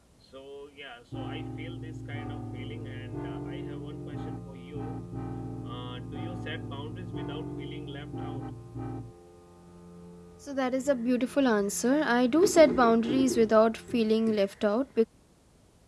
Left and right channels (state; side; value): identical; both; correlation 1.00